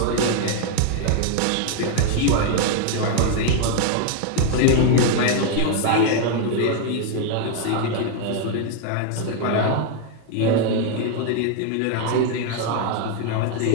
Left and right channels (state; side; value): different; both; correlation 0.00